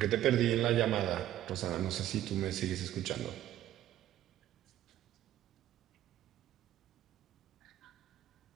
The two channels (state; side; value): quieter; left; 12.9 dB